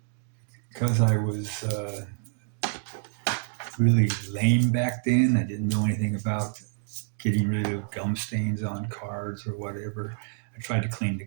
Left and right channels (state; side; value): silent; left; digital silence